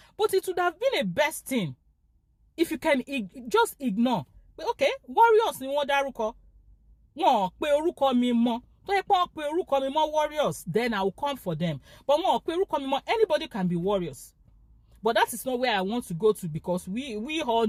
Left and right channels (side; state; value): both; identical; correlation 1.00